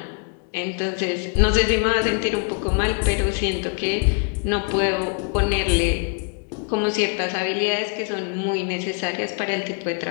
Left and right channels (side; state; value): right; quieter; 39.7 dB